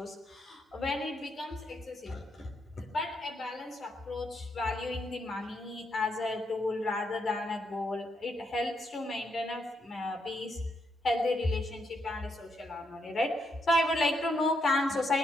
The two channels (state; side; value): normal; both; correlation 0.78